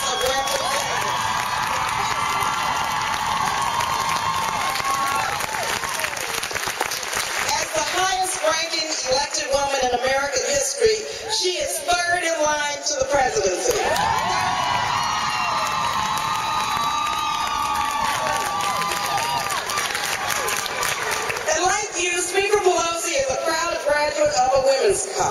of Representatives. As the highest-ranking elected woman in American history, she is third in line to the presidency. And like you, Speaker Pelosi is a proud graduate of a women's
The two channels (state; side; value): identical; both; correlation 1.00